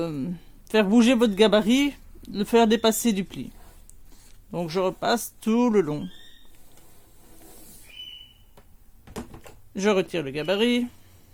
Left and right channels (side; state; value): both; identical; correlation 1.00